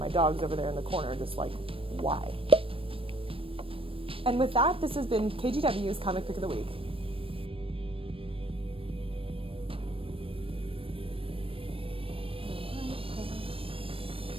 dog's over there in the corner just like, why? And with that, this has been KGW's Comic Pick of the Week.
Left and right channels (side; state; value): left; late; 0.26 ms